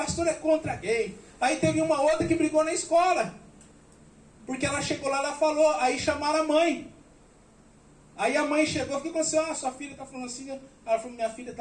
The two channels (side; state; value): both; identical; correlation 1.00